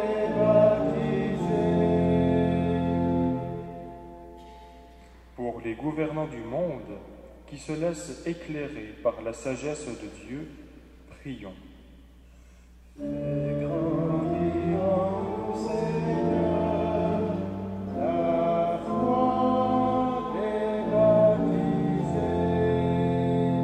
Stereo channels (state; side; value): identical; both; correlation 1.00